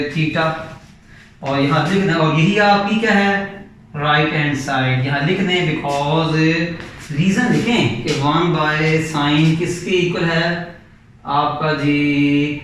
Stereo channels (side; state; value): both; identical; correlation 1.00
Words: थीटा। और यहाँ लिख दें, और यही आपकी क्या है राइट हैंड साइड, यहाँ लिख दें बिकॉज रीजन लिखें कि 1 बाय साइन किसके इक्वल है, आपका जी